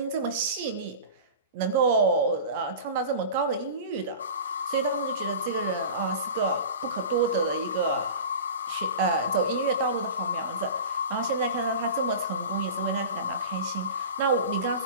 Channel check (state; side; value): inverted; both; correlation -0.34